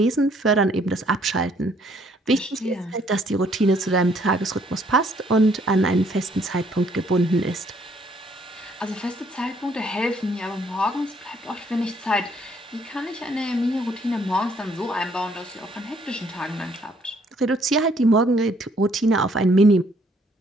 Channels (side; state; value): both; normal; correlation 0.65